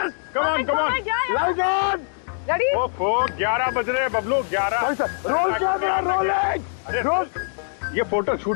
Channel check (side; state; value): right; silent; digital silence